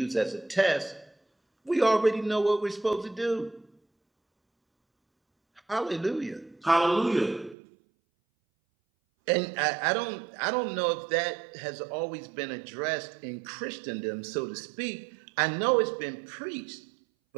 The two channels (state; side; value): drops out; left; at 7.6 s